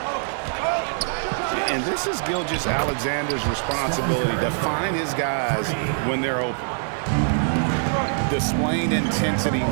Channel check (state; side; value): silent; left; digital silence